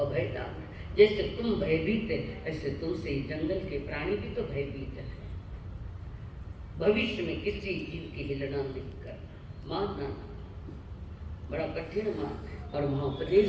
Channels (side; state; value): both; identical; correlation 1.00